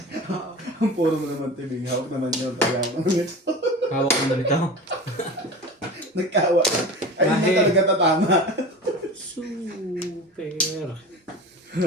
Ang puro mo naman tibing. Hawak naman yun. Hawak ko na rito. Nagkawa. Ay, hindi Kahit- talaga tatama. Super.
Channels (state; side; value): normal; both; correlation 0.33